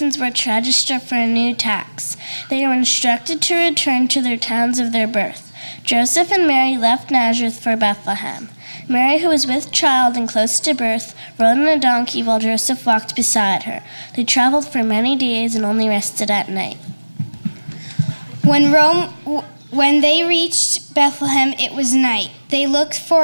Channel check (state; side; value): inverted; both; correlation -1.00